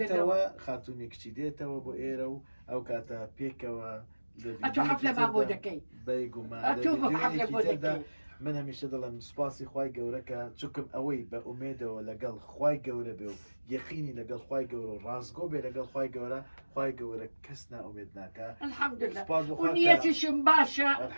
دێتەوە خاتونی کچی دێتەوە بۆ ئێرە و ئەو کاتە پێکەوە ئەتۆ حەفلە ما بۆ دەکەی ئەتۆ حەفلە بۆ دەکەی من هەمیشە دەڵێم سوپاسی خوای گەورەکە چووکم ئەوەی بە ئومێدەوە لەگەڵ خوای گەورە بێ و یەقینی لەگەڵ خوای گەورە و ڕازگۆ بێ لەگەڵ خوای گەورە کەس نائومێد ناکە الحەمدوللا و نیەتیشم باشە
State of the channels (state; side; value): inverted; both; correlation -1.00